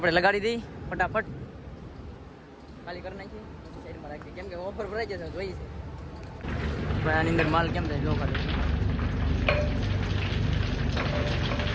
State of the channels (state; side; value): identical; both; correlation 1.00